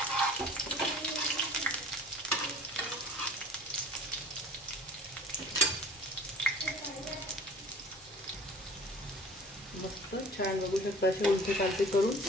मस्त छान बघू शकता. असे उलटे पालटे करून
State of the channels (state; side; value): normal; both; correlation 0.46